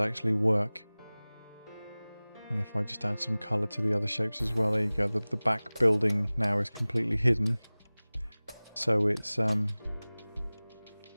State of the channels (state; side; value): inverted; both; correlation -0.99